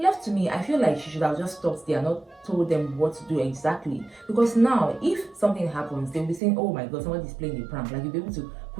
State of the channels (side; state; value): left; drops out; at 6.4 s